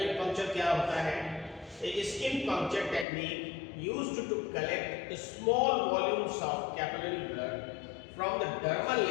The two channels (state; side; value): drops out; right; at 3.1 s